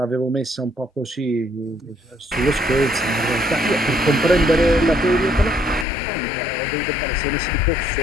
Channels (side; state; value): right; drops out; at 5.9 s